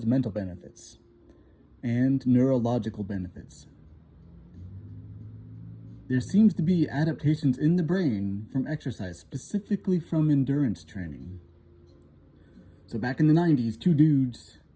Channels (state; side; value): identical; both; correlation 1.00